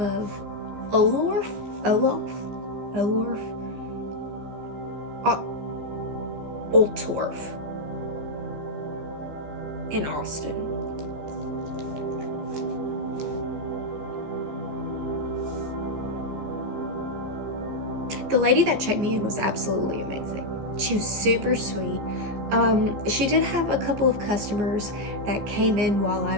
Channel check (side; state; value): left; late; 14 ms